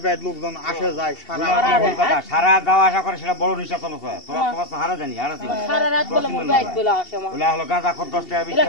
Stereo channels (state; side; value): late; right; 2.7 ms